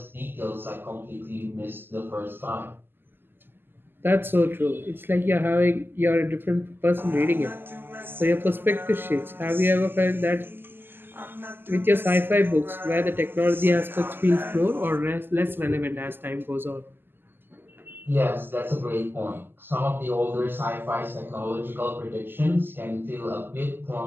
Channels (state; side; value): late; left; 0.098 ms